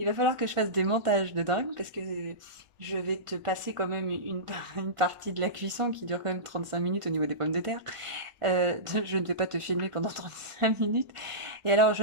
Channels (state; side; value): late; left; 1.5 ms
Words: va falloir que je fasse des montages de dingue, parce que je vais te passer quand même une partie de la cuisson qui dure quand même 35 minutes au niveau des pommes de terre. Je ne vais pas te filmer pendant 35 minutes. Et alors, je